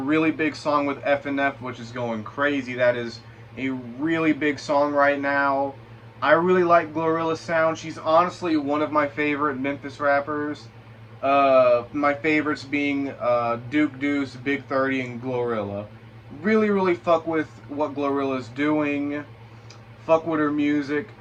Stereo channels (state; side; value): identical; both; correlation 1.00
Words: big song with FNF, which is going crazy. That is a really big song right now. I really like GloRilla's sound. She's honestly one of my favorite Memphis rappers. My favorites being Deuce, Big 30, and GloRilla. Really fuck with what GloRilla's doing. Fuck with her music.